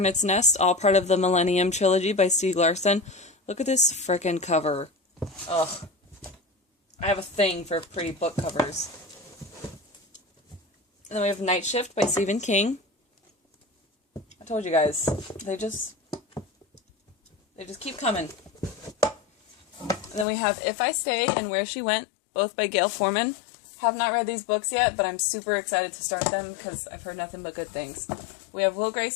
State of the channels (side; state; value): right; drops out; at 20.2 s